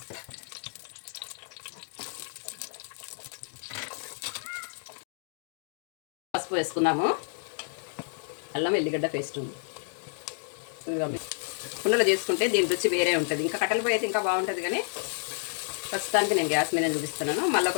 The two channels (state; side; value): silent; right; 55 dB below the other